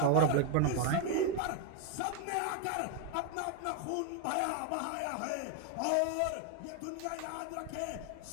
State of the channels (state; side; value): different; both; correlation 0.01